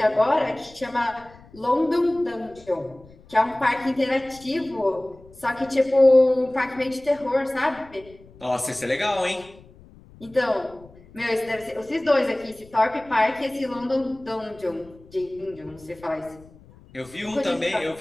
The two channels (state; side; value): noise; left; rumble, 24 dB below the sound